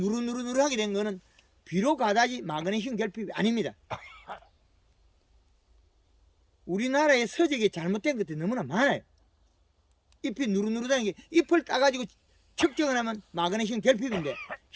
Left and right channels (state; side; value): identical; both; correlation 1.00